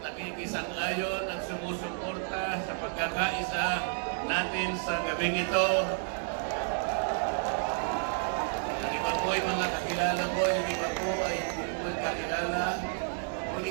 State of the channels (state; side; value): silent; left; 57 dB below the other